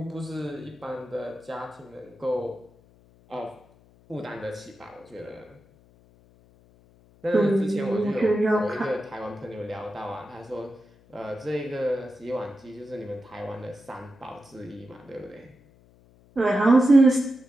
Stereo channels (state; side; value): noise; left; hum, 28 dB below the sound